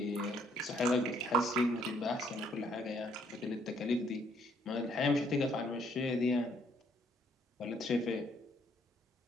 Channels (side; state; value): both; normal; correlation 0.67